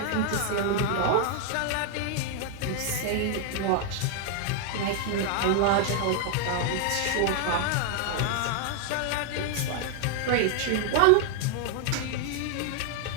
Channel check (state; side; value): different; both; correlation 0.00